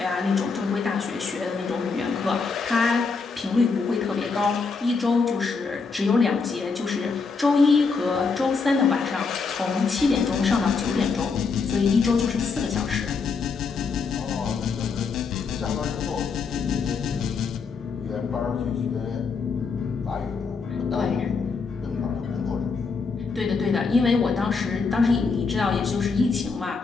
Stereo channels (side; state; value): right; quieter; 4.8 dB